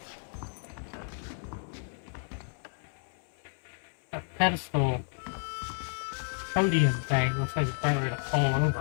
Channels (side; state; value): right; silent; 57 dB below the other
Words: That pedestal podium thing looks like it's about ready to fall